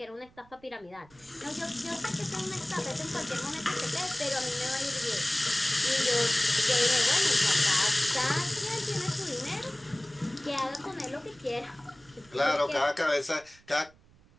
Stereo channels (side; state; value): right; noise; rumble, 28 dB below the sound